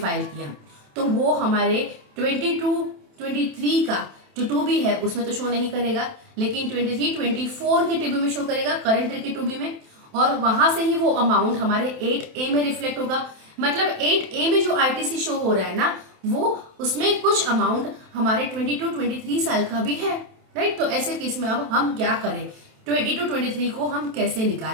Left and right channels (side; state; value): left; late; 27 ms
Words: किया, तो वो हमारे 22-23 का जो 2B है उसमें तो शो नहीं करेगा, लेकिन 23-24 के 2B में शो करेगा, करंट ईयर के 2B में, और वहां से ही वो अमाउंट हमारे 8A में रिफ्लेक्ट होगा। मतलब 8A में जो ITC शो हो रहा है ना, वो उसमें कुछ अमाउंट हमारे 22-23 साल का भी है, राइट। तो ऐसे केस में अब हम क्या करें, 22-23 को हम कैसे